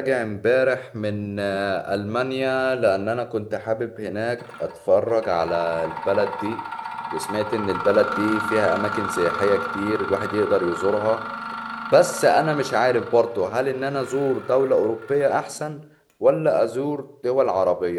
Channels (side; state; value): both; identical; correlation 1.00